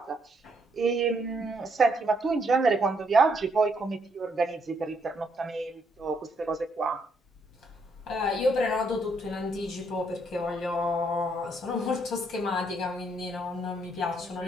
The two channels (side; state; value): both; normal; correlation 0.73